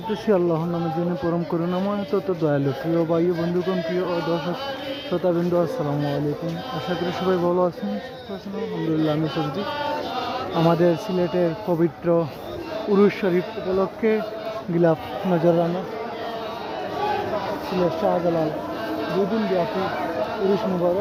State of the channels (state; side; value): identical; both; correlation 1.00